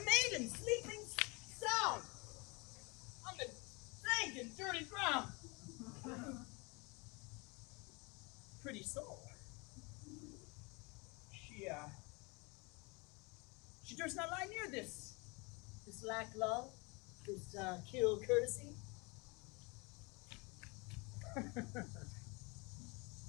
sleeping sound on the dank and dirty ground. Pretty soul. She durst not lie near this lack love, this kill courtesy.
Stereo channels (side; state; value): right; quieter; 28.5 dB